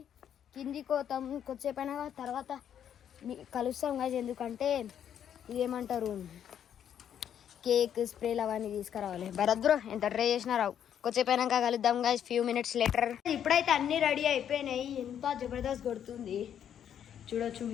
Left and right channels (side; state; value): right; quieter; 9.3 dB